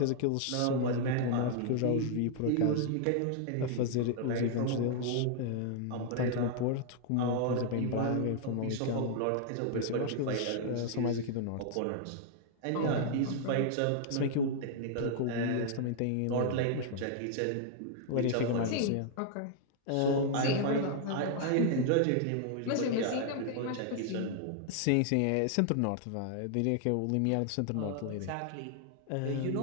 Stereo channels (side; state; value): both; different; correlation 0.00